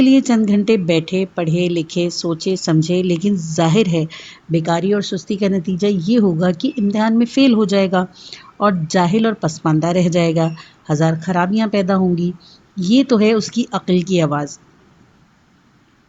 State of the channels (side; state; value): both; identical; correlation 1.00